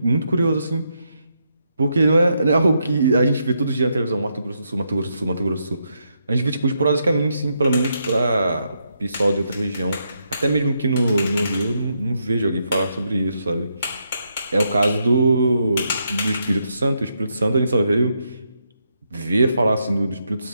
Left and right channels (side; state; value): both; inverted; correlation -0.80